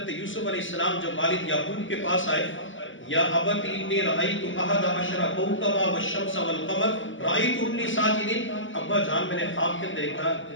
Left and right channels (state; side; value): late; right; 0.56 ms